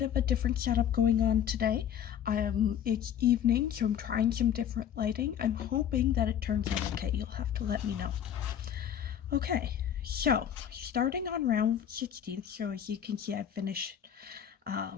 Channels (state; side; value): quieter; right; 9.6 dB